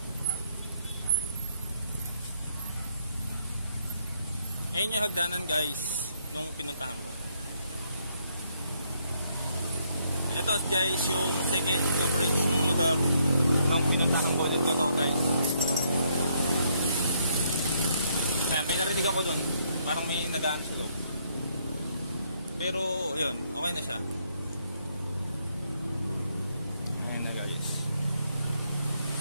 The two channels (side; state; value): both; inverted; correlation -0.72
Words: Ayun yung hagdanan guys nung pinuntahan ko. Ito guys yung second coverage ng lugar nung pinuntahan ko. Dito to guys. May narinig ako doon. Parang may nagaan sa loob. Pero yun, okay na siya. Ayan na guys.